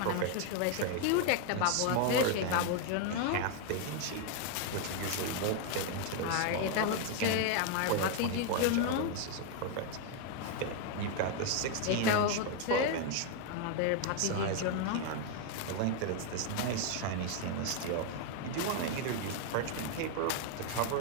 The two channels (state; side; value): different; both; correlation 0.01